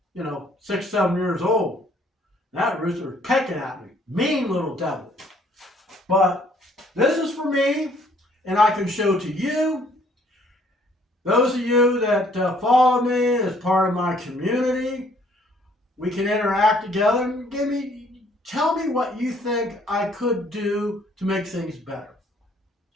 6, 7 years old. That rooster was pecking at me. Mean little devil. But this is for me, and I can show to you. Those of you that follow me as part of my community, we can interact together and tell me what you think I could do to make things better.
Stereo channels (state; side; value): normal; both; correlation 0.62